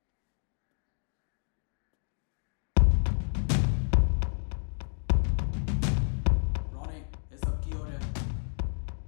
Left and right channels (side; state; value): right; silent; digital silence